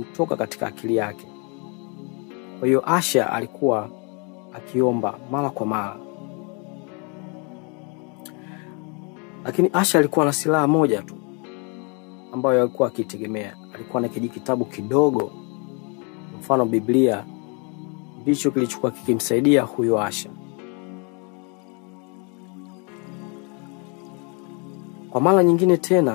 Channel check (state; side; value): quieter; right; 34.8 dB